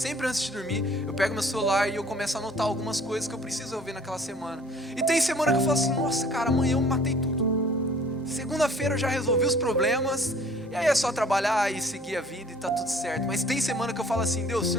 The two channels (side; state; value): both; normal; correlation 0.52